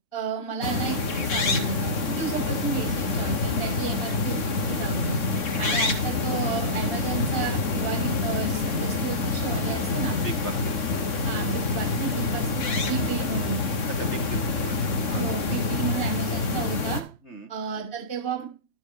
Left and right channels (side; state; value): right; late; 3.6 ms